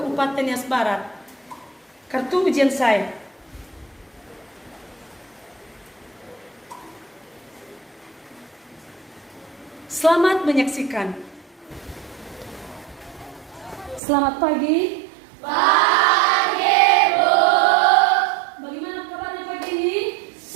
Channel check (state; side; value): drops out; left; at 14.0 s